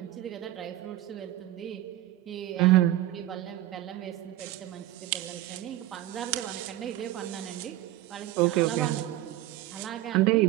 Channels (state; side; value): quieter; left; 14.7 dB